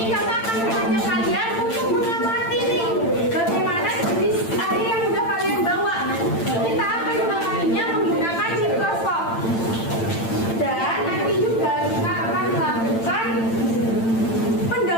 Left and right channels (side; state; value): right; late; 8.9 ms